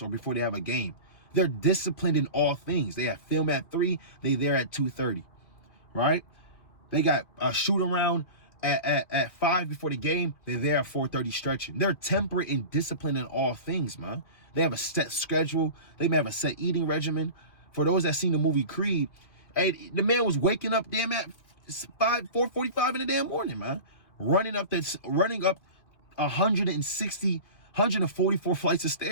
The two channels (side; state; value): right; late; 2.4 ms